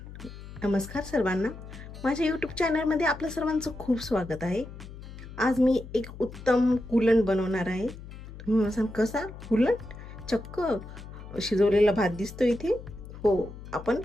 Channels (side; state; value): left; noise; hum, 14 dB below the sound